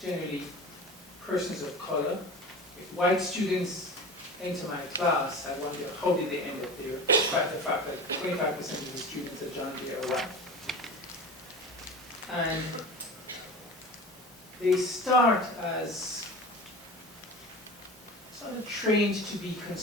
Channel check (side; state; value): both; normal; correlation 0.33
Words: persons of color. If white students enter my class, I wonder how did they end up there, despite the fact that 25% of the students at John Jay are white. And they start as sort of trained to be